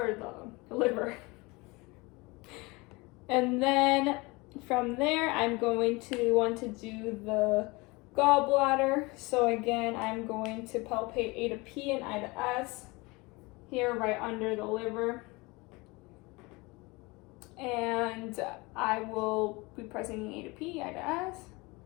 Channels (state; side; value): quieter; right; 24.8 dB